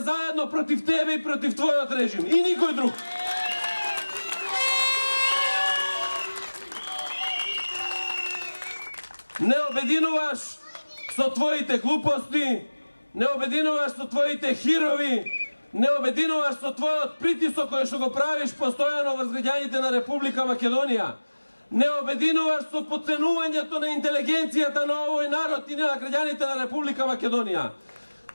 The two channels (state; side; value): inverted; both; correlation -1.00